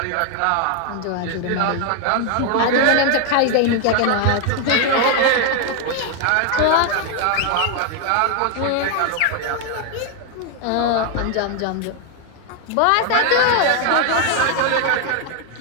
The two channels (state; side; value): different; both; correlation 0.01